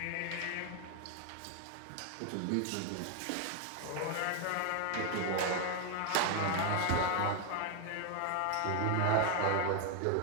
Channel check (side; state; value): both; different; correlation 0.01